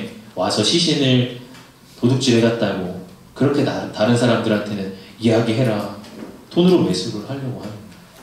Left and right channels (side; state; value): both; identical; correlation 1.00